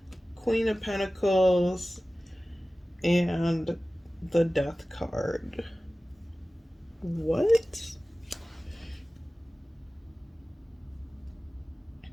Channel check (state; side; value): normal; both; correlation 0.97